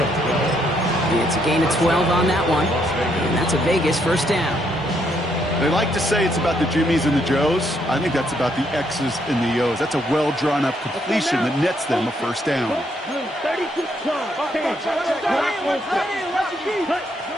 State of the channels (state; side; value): normal; both; correlation 0.73